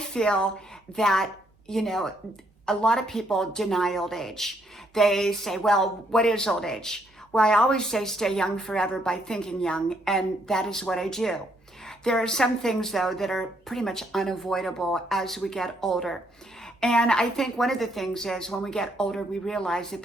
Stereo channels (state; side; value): normal; both; correlation 0.72